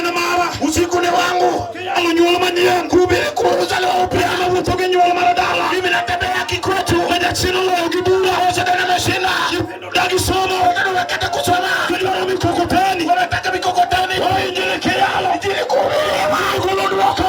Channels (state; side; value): identical; both; correlation 1.00